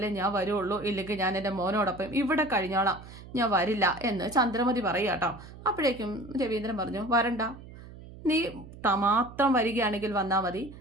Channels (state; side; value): noise; right; hum, 16 dB below the sound